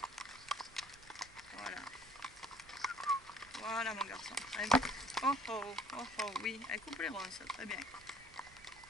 Voilà. Voilà mon garçon. Très bien. Oh oh, oh oh, oui, elle coupe les ronces, très bien.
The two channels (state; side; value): noise; right; rumble, 23 dB below the sound